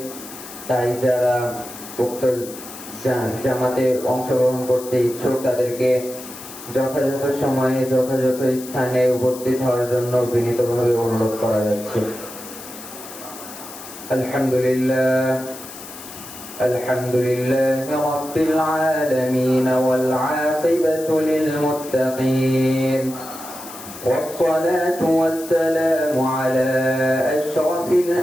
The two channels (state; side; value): noise; left; hiss, 14 dB below the sound